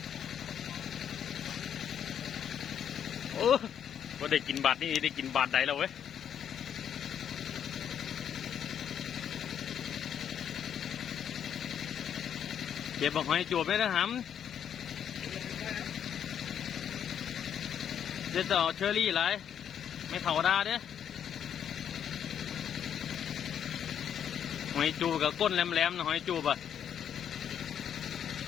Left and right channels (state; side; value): quieter; right; 8.9 dB